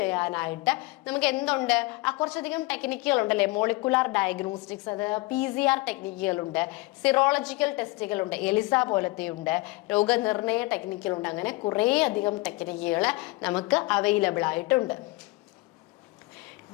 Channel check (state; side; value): quieter; right; 22.3 dB